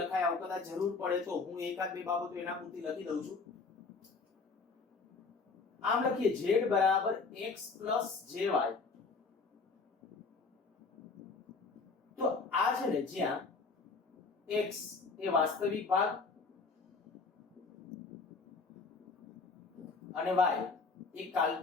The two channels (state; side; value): quieter; right; 4.4 dB